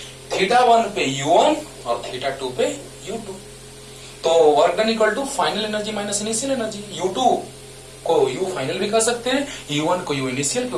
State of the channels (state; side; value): identical; both; correlation 1.00